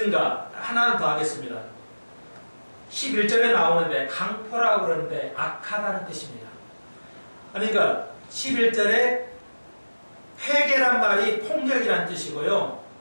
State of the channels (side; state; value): both; inverted; correlation -1.00